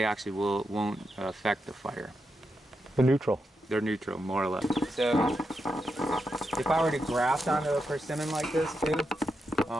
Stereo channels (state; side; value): normal; both; correlation 0.85